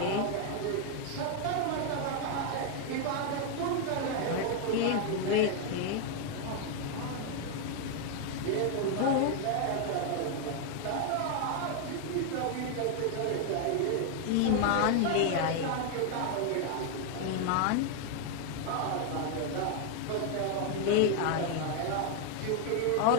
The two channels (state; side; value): different; both; correlation 0.01